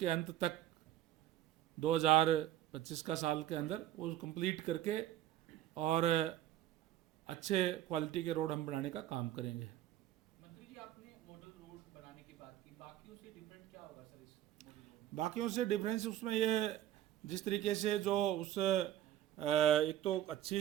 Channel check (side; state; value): left; quieter; 12.7 dB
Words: अंत तक 2025 का साल के अंदर वो कंप्लीट करके और अच्छे क्वालिटी के रोड हम बनाने का काम करेंगे। मंत्री जी, आपने मॉडल रोड बनाने की बात की, बाकियों से डिफरेंट क्या होगा सर इस मॉडल रोड? बाकियों से डिफरेंस उसमें ये जिस तरीके से जो उस एक तो अच्छी